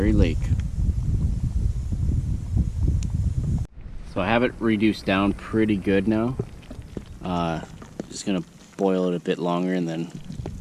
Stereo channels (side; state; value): both; identical; correlation 1.00